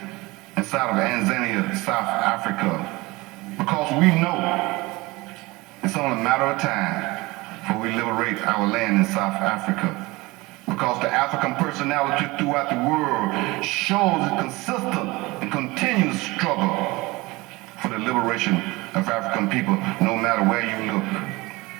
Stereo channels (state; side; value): quieter; left; 22.3 dB